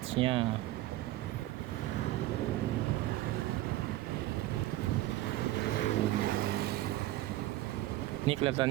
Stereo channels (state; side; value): quieter; left; 16.2 dB